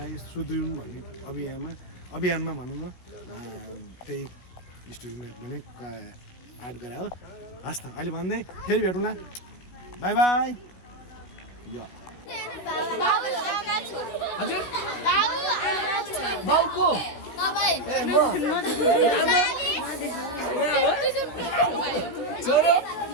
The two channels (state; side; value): late; right; 17 ms